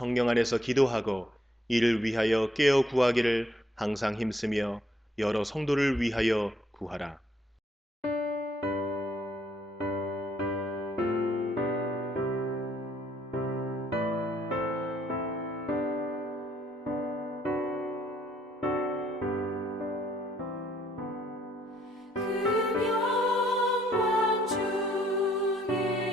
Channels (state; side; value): normal; both; correlation 0.69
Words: 안에서 기도하고 이를 위하여 깨어 구하기를 항상 힘쓰며 여러 성도를 위하여 구하라. 그 영광